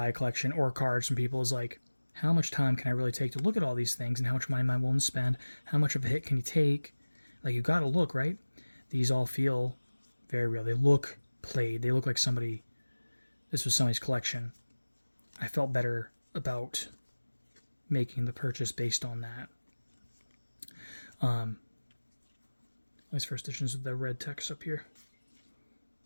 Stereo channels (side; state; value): both; inverted; correlation -1.00